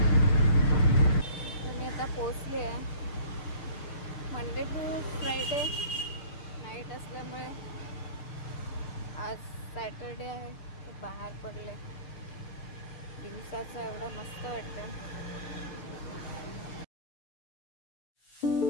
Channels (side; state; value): right; late; 6.7 ms